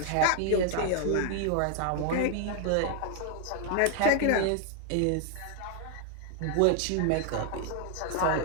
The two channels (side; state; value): both; different; correlation 0.00